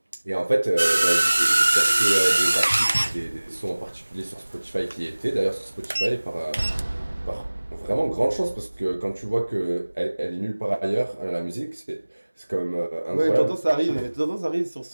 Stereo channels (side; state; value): both; inverted; correlation -1.00